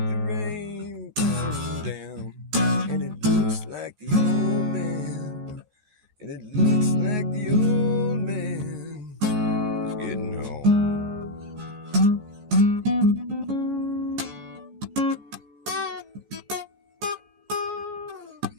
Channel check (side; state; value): left; late; 14 ms